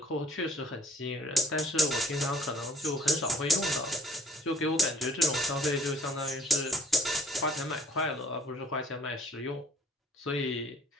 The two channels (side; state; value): both; normal; correlation 0.56